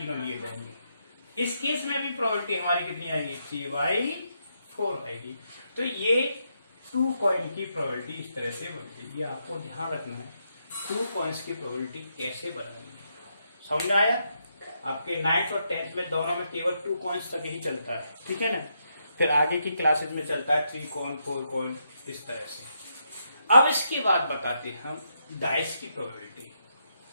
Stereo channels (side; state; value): both; inverted; correlation -0.80